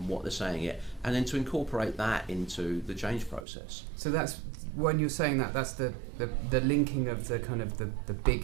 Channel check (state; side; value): drops out; left; at 3.5 s